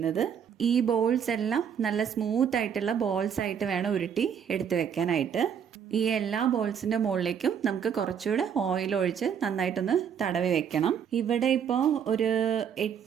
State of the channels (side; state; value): left; quieter; 7.9 dB